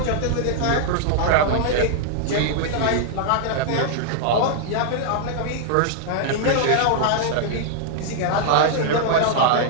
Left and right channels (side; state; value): both; different; correlation -0.01